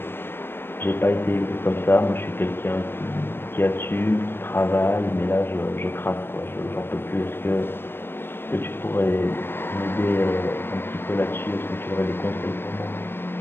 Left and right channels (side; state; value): right; late; 0.10 ms